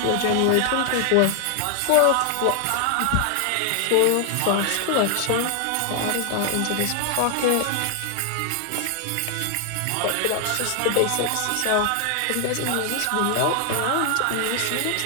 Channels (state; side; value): different; both; correlation 0.00